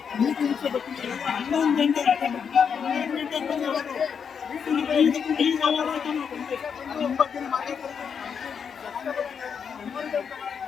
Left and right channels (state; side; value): quieter; right; 6.8 dB